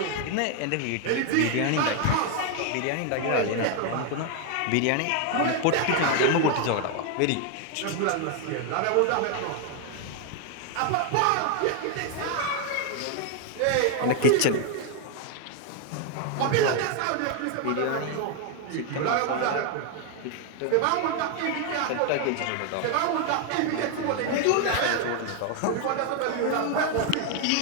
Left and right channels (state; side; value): different; both; correlation 0.00